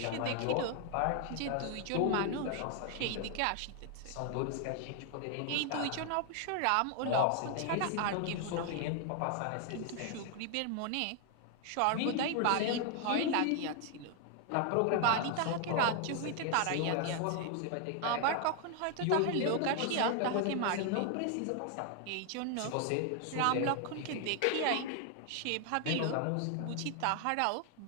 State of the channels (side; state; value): both; different; correlation 0.00